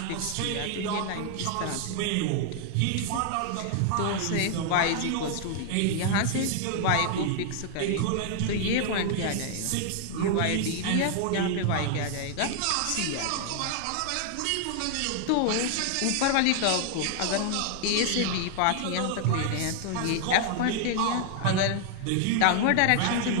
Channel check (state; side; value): different; both; correlation 0.00